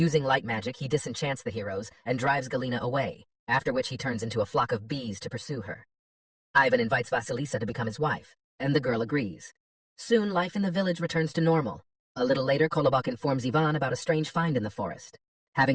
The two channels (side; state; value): both; identical; correlation 1.00